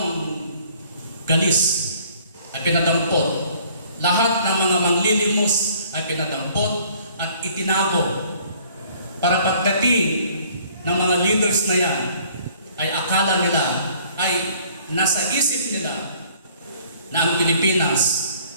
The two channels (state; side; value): inverted; both; correlation -0.57